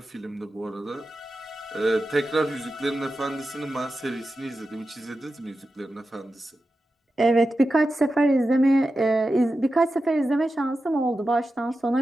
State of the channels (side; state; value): both; normal; correlation 0.92